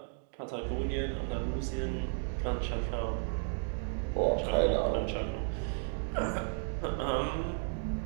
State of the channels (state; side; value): silent; left; 55 dB below the other